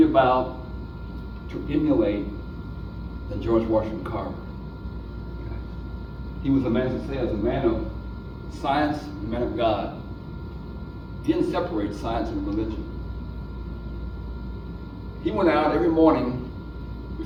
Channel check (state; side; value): identical; both; correlation 1.00